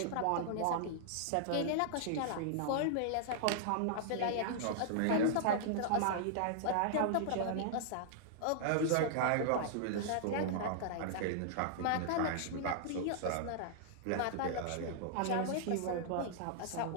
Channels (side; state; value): both; different; correlation -0.01